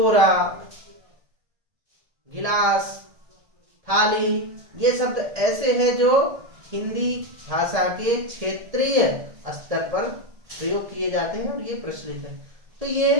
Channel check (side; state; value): left; late; 1.7 ms